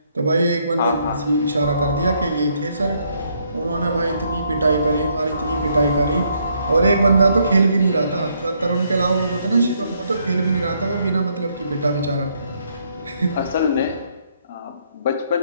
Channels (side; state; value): both; inverted; correlation -0.72